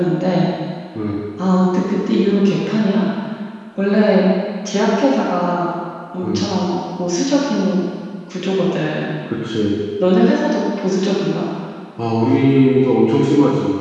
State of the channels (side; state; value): both; identical; correlation 1.00